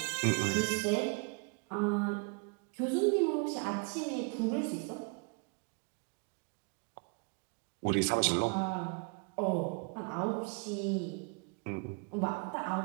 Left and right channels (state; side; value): quieter; left; 35.4 dB